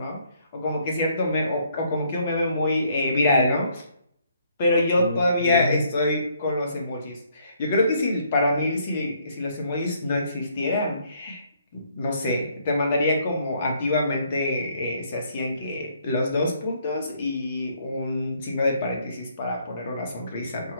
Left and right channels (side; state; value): both; inverted; correlation -0.67